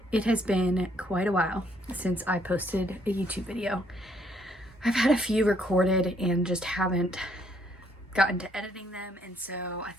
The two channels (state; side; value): normal; both; correlation 0.68